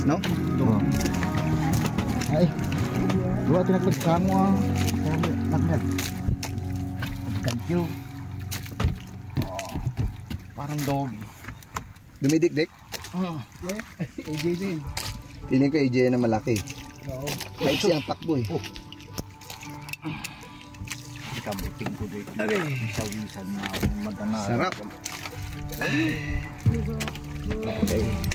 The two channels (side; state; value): both; identical; correlation 1.00